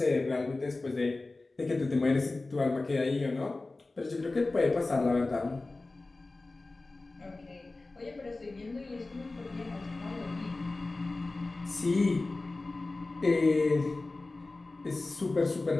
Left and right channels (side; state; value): right; quieter; 3.3 dB